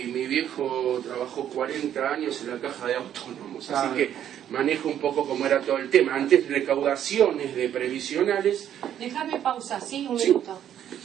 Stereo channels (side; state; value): left; quieter; 10.3 dB